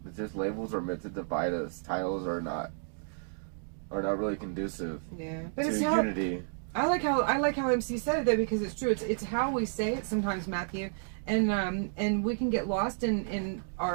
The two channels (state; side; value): silent; left; digital silence